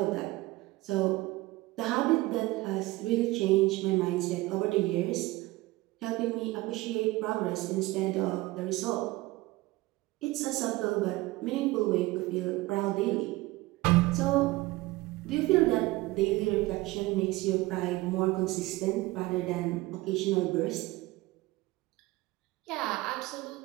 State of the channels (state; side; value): quieter; left; 19.8 dB